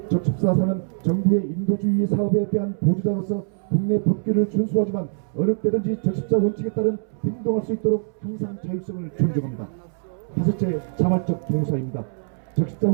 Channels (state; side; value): silent; left; 63 dB below the other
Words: 적십사사는 정부의 인도주의 사업에 대한 보조자로서 국내 법규를 준수하지만 어느 때든지 적십자 원칙에 따른 행동할 수 있도록 항상 자율성을 존중합니다. 다섯째, 자발적 봉사입니다. 적십자